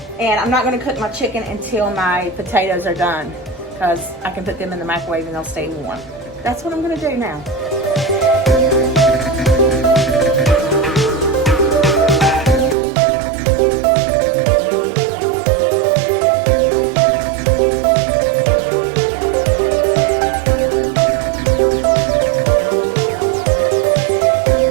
and I'm not gonna cook my chicken until my potatoes are done because I can put them in the microwave and they'll stay warm. That's what I'm gonna do now.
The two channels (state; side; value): drops out; left; at 12.8 s